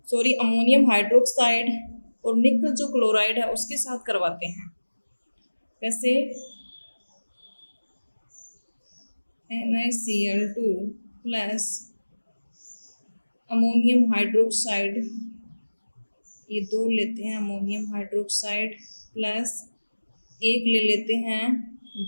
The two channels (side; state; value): both; inverted; correlation -1.00